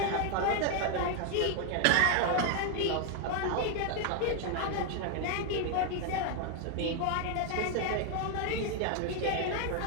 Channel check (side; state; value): both; different; correlation 0.00